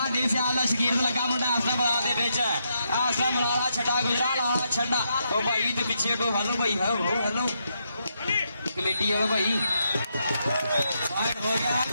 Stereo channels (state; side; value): inverted; both; correlation -0.80